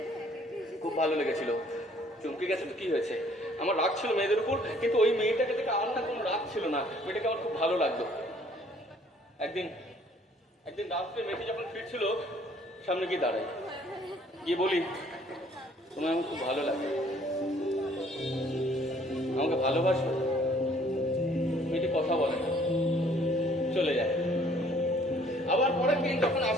খুব ভালো লেগেছিল। চমকে গেছে তো, কি হয়েছে? আমার রাগ ছিল মেয়েদের উপর, কিন্তু ওই মেয়েটাকে দেখে আমার না কোনো রাগ ছিল না, মেয়েটাকে আমার খুব ভালো লাগতো। একদিন রাত্রে মেয়েটি যখন ফিরছিল, সামনে গিয়ে দাঁড়াই, গিয়ে বলি, তোমায় আমার খুব ভালো লাগে, আমাকে ভালোবাসো? মেয়েটি কথা বলে না, চলে যায়। আবার পরের দিন যখন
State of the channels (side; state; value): both; normal; correlation 0.59